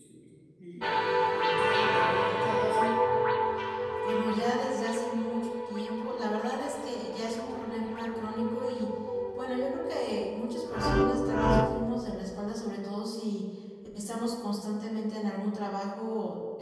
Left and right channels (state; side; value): identical; both; correlation 1.00